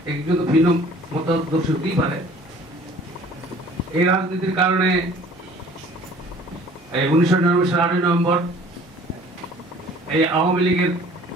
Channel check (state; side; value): normal; both; correlation 0.51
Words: একজন তো ভিন্ন মতাদর্শ হতেই পারে। এই রাজনীতির কারণে 1999 সালের 8 নভেম্বর এই আওয়ামী লীগের